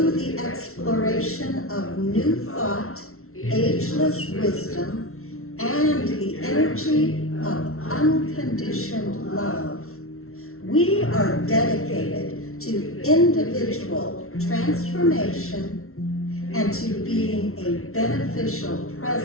the exploration of new thought, ageless wisdom, and the energy of unconditioned love, we are dedicated to individual transformation and to being a beneficial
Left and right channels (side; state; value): right; late; 0.63 ms